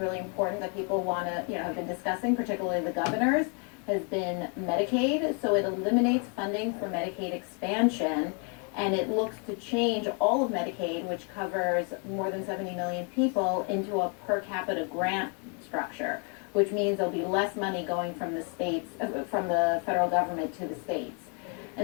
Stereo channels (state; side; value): quieter; right; 37.9 dB